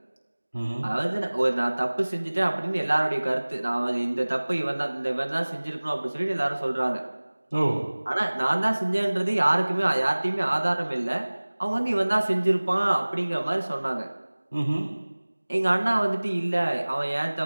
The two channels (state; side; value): inverted; both; correlation -1.00